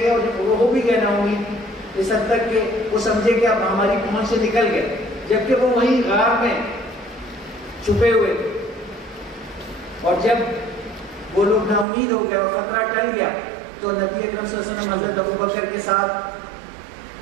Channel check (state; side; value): drops out; left; at 11.9 s